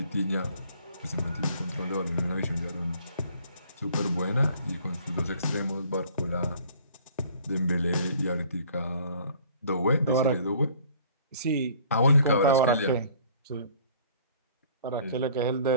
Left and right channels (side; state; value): both; inverted; correlation -0.54